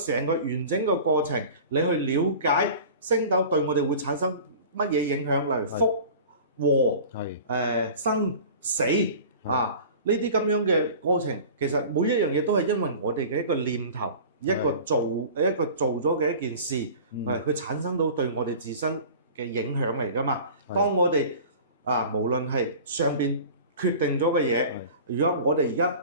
個完整嘅過程，你去了解星斗對我哋會產生乜嘢影響，例如福禍、生死啊呢啲咁樣嘅過程，其實每一樣嘢都係因為我哋嘅一個念頭，一個做咗嘅一件事，佢產生到對我哋自身嘅影響嚟㗎嘛。當我哋無論係上邊決定咗嘅嘢，如果我哋而家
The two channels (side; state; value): both; inverted; correlation -0.40